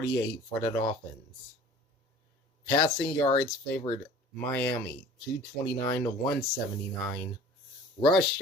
for the Dolphins. Passing yards favored Miami, 229 to 179. Rush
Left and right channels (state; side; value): normal; both; correlation 0.46